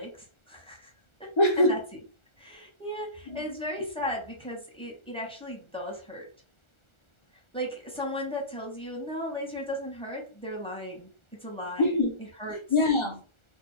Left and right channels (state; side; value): late; right; 1.4 ms